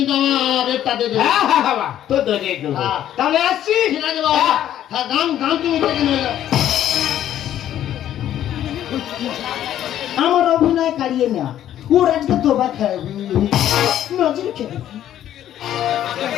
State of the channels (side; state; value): right; quieter; 11.5 dB